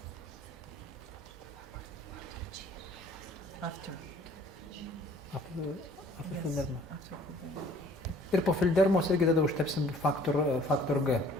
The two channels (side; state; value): both; normal; correlation 0.55